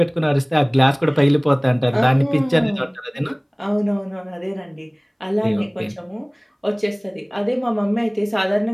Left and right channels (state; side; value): identical; both; correlation 1.00